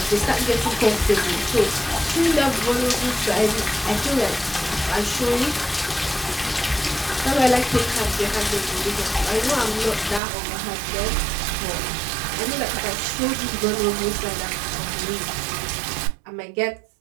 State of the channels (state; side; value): drops out; left; at 10.2 s